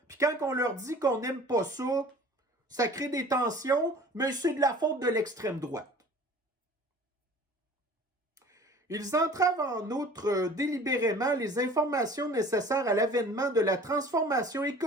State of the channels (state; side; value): normal; both; correlation 0.45